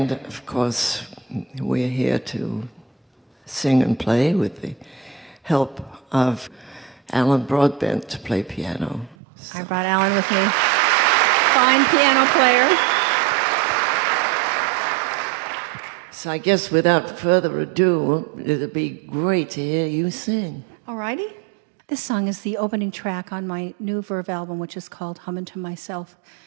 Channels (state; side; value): drops out; left; at 9.2 s